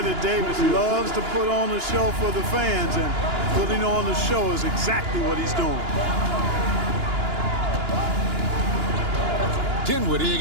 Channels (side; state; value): left; late; 2.9 ms